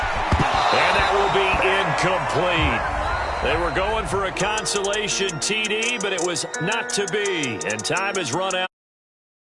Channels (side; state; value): both; identical; correlation 1.00